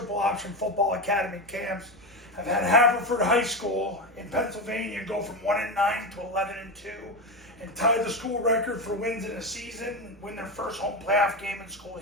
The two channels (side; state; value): both; normal; correlation 0.16